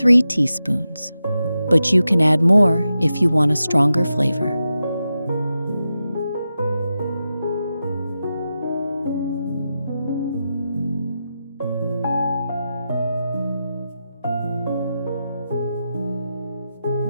teaspoons, but you can add more if you want a stronger flavor.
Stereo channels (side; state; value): both; inverted; correlation -0.90